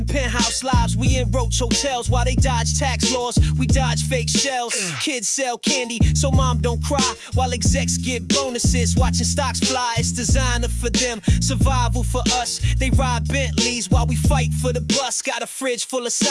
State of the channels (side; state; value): both; identical; correlation 1.00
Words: penthouse lives, we in roach hotels. While they dodge tax laws, we dodge fake shells. Kids sell candy, so mom don't cry. While execs get bonuses, watching stocks fly. It's designer for them, survival for us. They ride Bentleys while we fight for the bus. Got a fridge full of